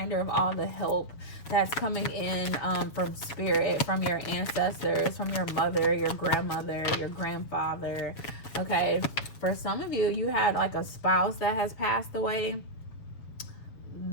of all the help that's coming in from Spirit, from your ancestors, from your mother, your grandmother, your grandfather. Okay, for some of you, you had like a spouse that has passed away.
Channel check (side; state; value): right; late; 7.0 ms